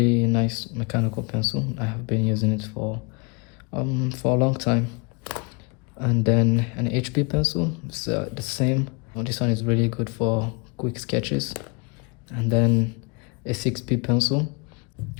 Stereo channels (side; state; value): right; quieter; 32.0 dB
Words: nice mechanical pencil. I have been using it for a long time. And then an HB pencil. It's the same. This one is really good for quick sketches. And then a 6B pencil,